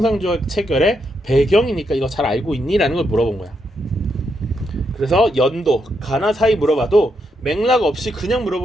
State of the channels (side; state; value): both; normal; correlation 0.80